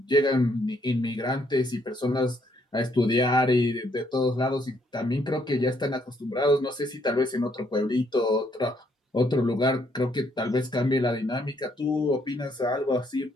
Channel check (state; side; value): normal; both; correlation 0.70